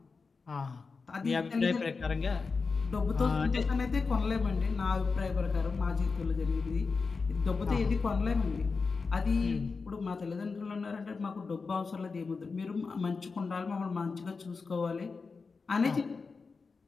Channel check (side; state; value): right; quieter; 4.6 dB